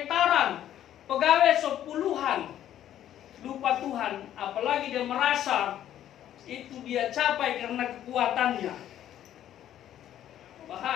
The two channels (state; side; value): quieter; right; 11.4 dB